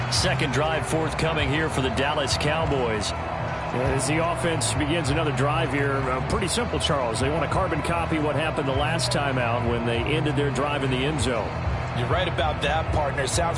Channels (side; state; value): both; identical; correlation 1.00